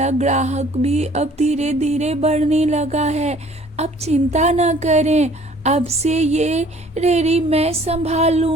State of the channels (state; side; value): normal; both; correlation 0.54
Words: ग्राहक भी अब धीरे धीरे बढ़ने लगा है। अब चिंता न करें, अब से ये रेडी मैं संभाल